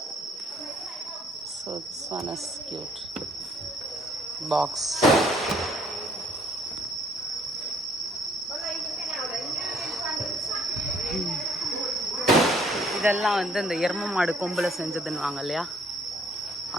So this one is cute box. இதெல்லாம் வந்து இந்த எரும மாடு கொம்பில் செஞ்சதுன்னு வாங்க இல்லையா,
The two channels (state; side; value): normal; both; correlation 0.62